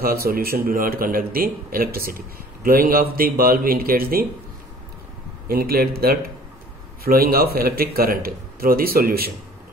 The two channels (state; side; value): normal; both; correlation 0.50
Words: solution do not conduct the electricity. Glowing of the bulb indicates that flowing of electric current through the solution.